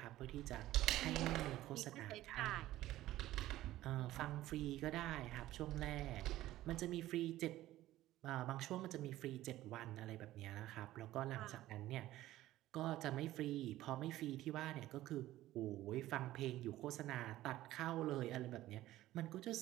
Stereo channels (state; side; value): quieter; left; 15.3 dB